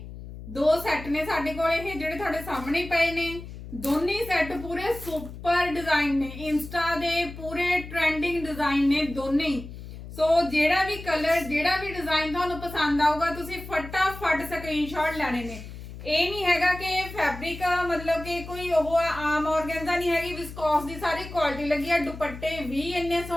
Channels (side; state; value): left; noise; hum, 12 dB below the sound